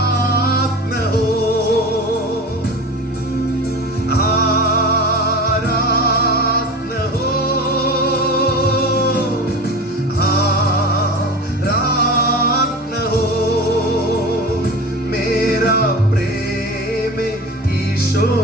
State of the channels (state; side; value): normal; both; correlation 0.32